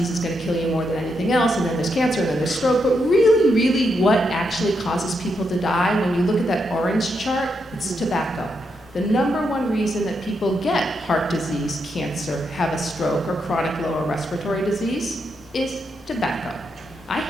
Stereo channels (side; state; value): both; normal; correlation 0.81